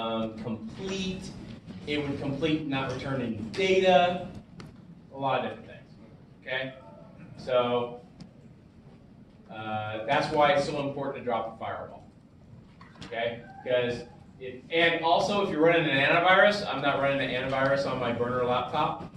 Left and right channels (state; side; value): identical; both; correlation 1.00